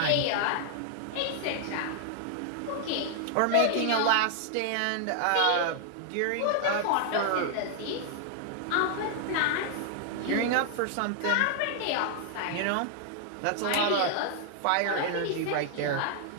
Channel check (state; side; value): different; both; correlation 0.00